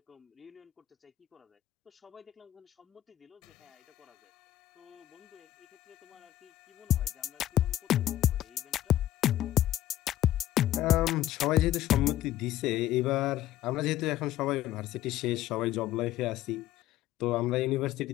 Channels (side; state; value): right; quieter; 13.5 dB